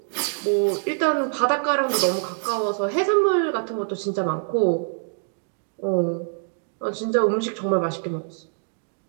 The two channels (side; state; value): left; silent; digital silence